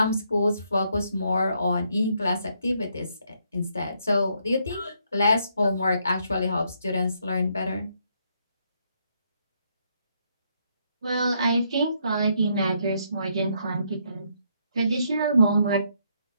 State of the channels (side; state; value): both; inverted; correlation -0.74